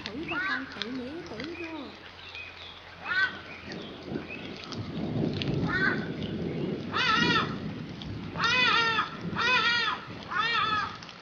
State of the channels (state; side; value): identical; both; correlation 1.00